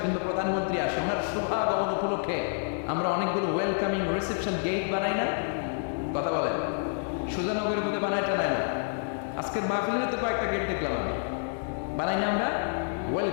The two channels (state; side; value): silent; right; digital silence